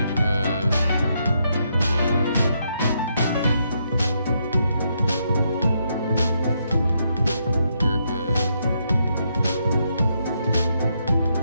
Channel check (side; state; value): both; inverted; correlation -0.78